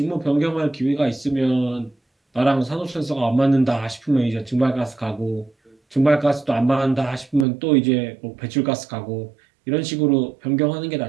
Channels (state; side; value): drops out; left; at 7.5 s